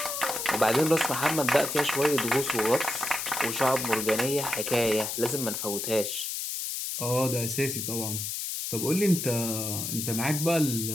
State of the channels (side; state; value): left; noise; hiss, 3 dB below the sound